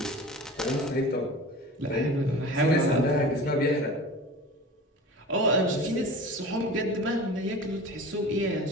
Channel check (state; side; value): normal; both; correlation 0.37